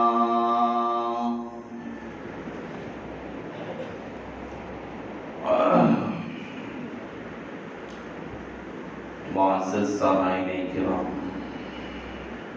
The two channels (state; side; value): identical; both; correlation 1.00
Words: معزز سامعین کرام